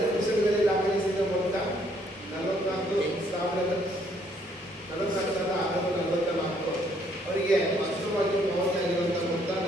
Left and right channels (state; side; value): normal; both; correlation 0.67